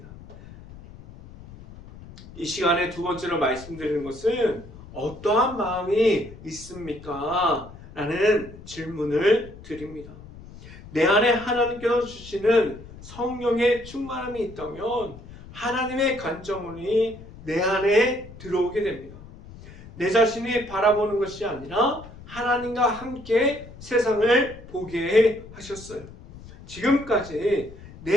이 시간에 두 번째로 말씀드리는 것은 어떠한 마음이 있습니까? 라는 질문을 드립니다. 내 안에 하나님께서 주시는 성령의 충만함이 있다면 하나님의 관점이 내 안에 들어오게 됩니다. 내 자신이 바라보는 것이 아니라 하나님과 함께 세상을 보게 하셨어요. 지금까지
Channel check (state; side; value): noise; left; rumble, 17 dB below the sound